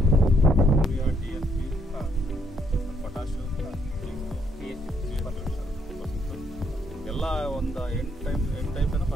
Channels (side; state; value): both; normal; correlation 0.72